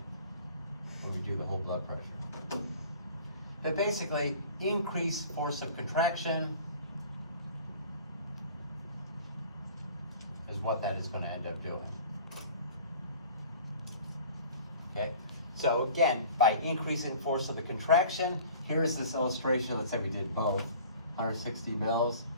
when we do the whole blood pressure. But basically, increase force of contraction is what that is going to end up doing. Okay? So again, by increasing force of the contraction, here's this illustration. Let's say we did both, 160 mils.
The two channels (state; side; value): inverted; both; correlation -0.45